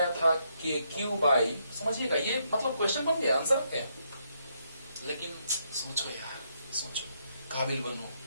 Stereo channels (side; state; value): both; inverted; correlation -0.76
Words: था के क्यू बाई, समझिएगा, ये मतलब क्वेश्चन बन गया, आंसर क्या, लेकिन सोचो यार, सोचो, काबिल बनो,